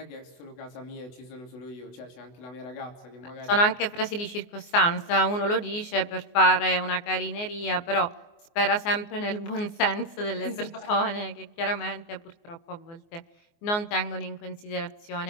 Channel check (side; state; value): right; late; 24 ms